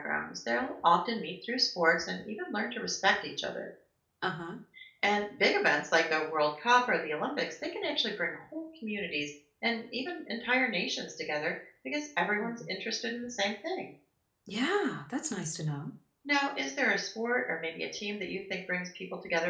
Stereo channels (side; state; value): both; identical; correlation 1.00